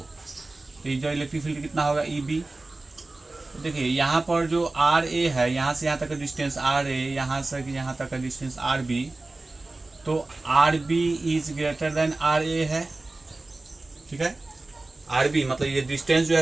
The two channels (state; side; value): quieter; left; 3.1 dB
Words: तो ये जो इलेक्ट्रिक फील्ड कितना होगा, ई बी। तो देखिए यहाँ पर जो आर ए है, यहाँ से यहाँ तक का डिस्टेंस आर ए, यहाँ से यहाँ तक का डिस्टेंस आर बी, तो R B is greater than R A है। ठीक है, आर बी मतलब ये डिस्टेंस जो